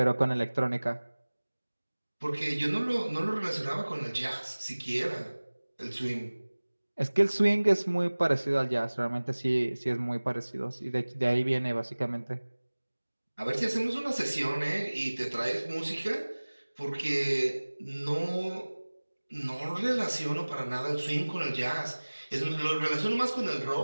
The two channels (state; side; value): inverted; both; correlation -1.00